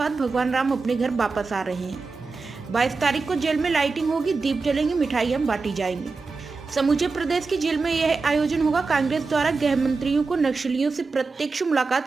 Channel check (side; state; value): left; quieter; 4.2 dB